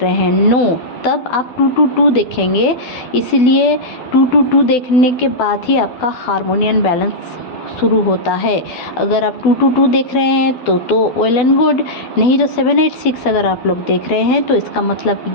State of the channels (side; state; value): right; late; 12 ms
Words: हैं, नो। तब आप 222 देखेंगे, इसलिए 222 देखने के बाद ही आपका हार्मोनी एंड बैलेंस शुरू होता है। अगर आप 222 देख रहे हैं तो वेल एंड गुड, नहीं तो 786 अगर आप लोग देख रहे हैं तो इसका